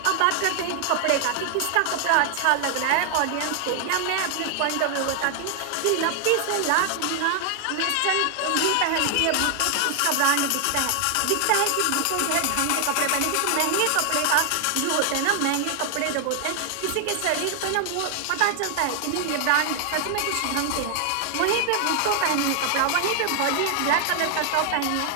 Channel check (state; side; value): different; both; correlation 0.00